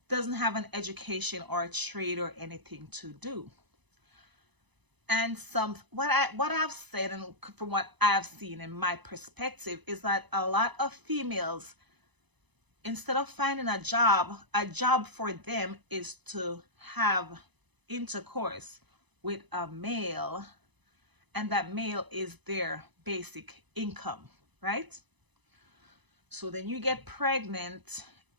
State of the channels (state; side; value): late; left; 1.0 ms